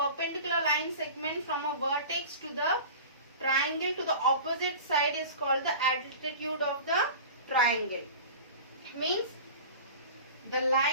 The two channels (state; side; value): inverted; both; correlation -0.36